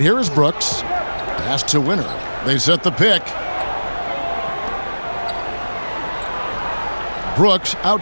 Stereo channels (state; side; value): inverted; both; correlation -1.00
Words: here is Brooks. Pass to Winner. They set the pick. Brooks